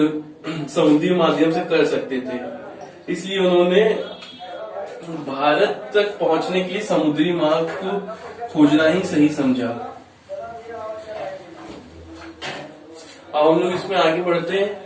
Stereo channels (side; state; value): both; identical; correlation 1.00